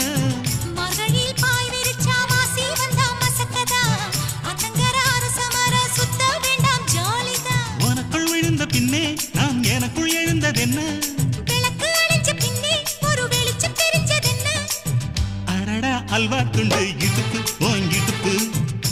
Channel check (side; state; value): both; identical; correlation 1.00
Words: மகளில் பாய் விரிச்சா வாசி வந்தா மசக்கதா அத்தங்கர அரசமர சுத்த வேண்டாம் ஜாலிதான் உனக்குள் விழுந்த பின்னே நாம் எனக்குள் எழுந்ததென்ன விளக்கு அணைஞ்ச பின்னே ஒரு வெளிச்சம் தெரிஞ்சதென்ன அடடா அல்வா துண்டு இடுப்பு ஓங்கிடுப்பு